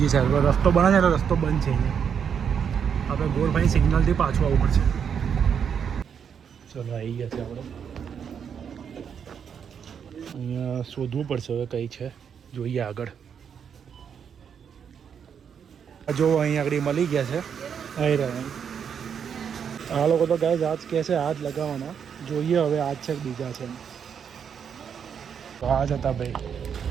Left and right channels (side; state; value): left; quieter; 7.5 dB